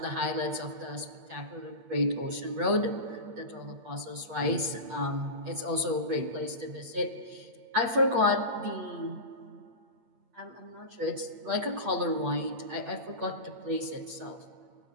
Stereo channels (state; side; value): late; left; 8.7 ms